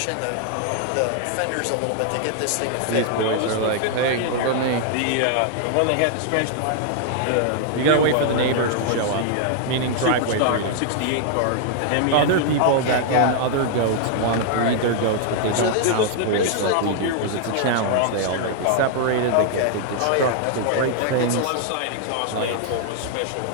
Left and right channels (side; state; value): both; different; correlation -0.01